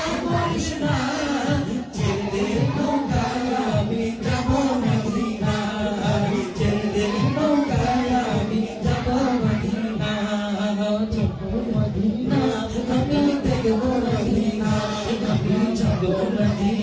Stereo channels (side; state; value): both; identical; correlation 1.00